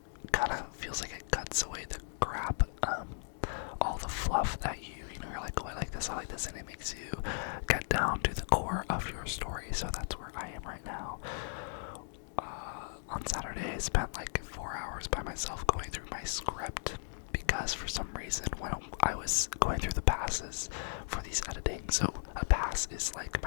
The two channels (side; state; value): right; silent; digital silence